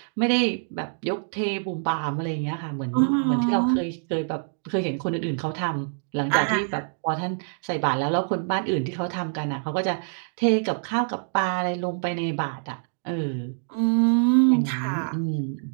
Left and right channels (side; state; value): left; silent; digital silence